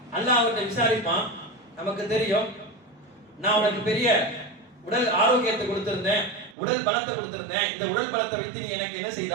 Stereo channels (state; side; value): drops out; left; at 6.6 s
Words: அல்லாஹ் அவர்கிட்ட விசாரிப்பான். நமக்கு தெரியும் நான் உனக்கு பெரிய உடல் ஆரோக்கியத்தை கொடுத்திருந்தேன், உடல் பலத்தை கொடுத்திருந்தேன், இந்த உடல் பலத்தை வைத்து நீ எனக்கு என்ன